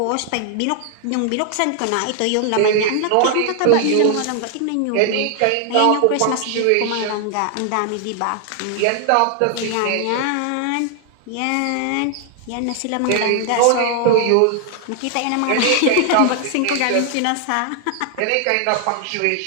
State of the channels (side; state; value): both; different; correlation 0.00